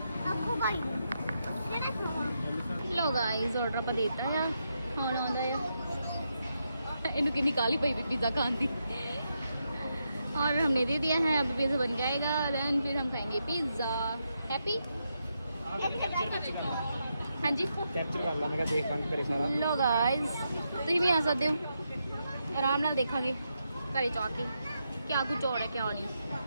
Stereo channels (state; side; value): inverted; both; correlation -0.83